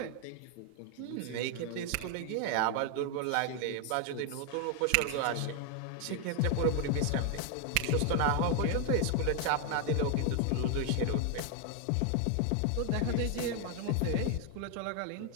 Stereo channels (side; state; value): both; different; correlation 0.01